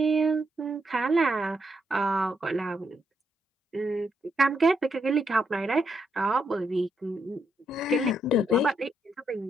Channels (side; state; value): both; normal; correlation 0.79